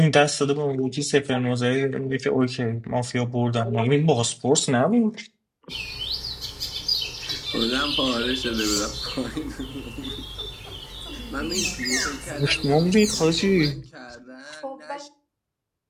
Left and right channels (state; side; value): identical; both; correlation 1.00